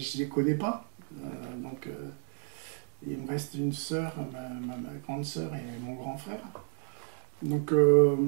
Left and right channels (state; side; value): silent; left; 56 dB below the other